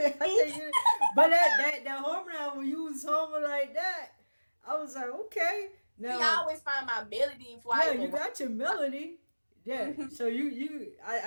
I think but that harmony when you was humming like that, I was like, okay. See, I Now, always find my melody before I yeah, even you write. got your melody. Yeah, Mhm. so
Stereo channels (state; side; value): inverted; both; correlation -1.00